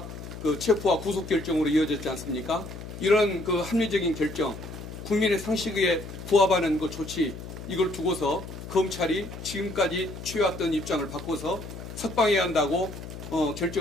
체포와 구속 결정으로 이어졌지 않습니까? 이런 합리적인 결정, 국민의 상식에 부합하는 조치, 이걸 두고서 검찰이 지금까지 취해왔던 입장을 바꿔서 석방해야 한다고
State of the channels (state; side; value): noise; left; hum, 11 dB below the sound